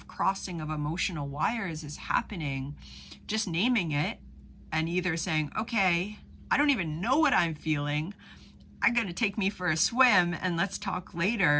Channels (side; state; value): both; identical; correlation 1.00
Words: crossing of emotional wires is happening, just naming it and either saying, okay, I don't even know what I'm feeling, I'm going to take me for a swim and let's talk